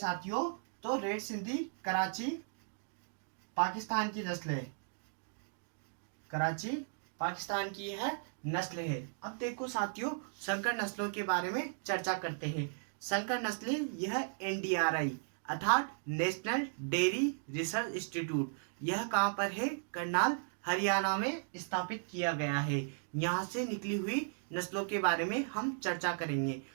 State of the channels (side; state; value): left; silent; digital silence